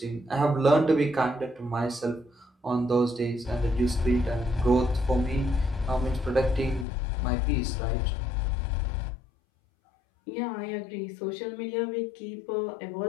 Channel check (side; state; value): right; drops out; at 6.9 s